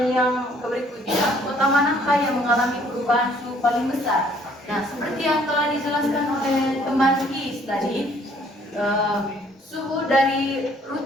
yang berikutnya. Kota manakah yang mengalami perubahan suhu paling besar? Nah, seperti yang telah dijelaskan oleh teman Is tadi, suhu dari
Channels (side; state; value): both; normal; correlation 0.61